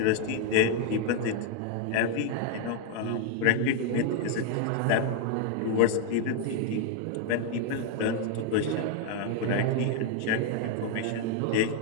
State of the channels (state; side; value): different; both; correlation 0.00